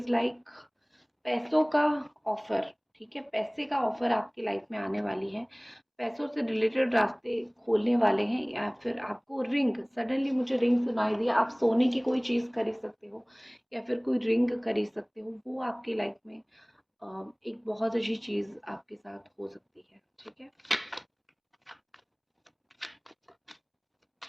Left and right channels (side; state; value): both; identical; correlation 1.00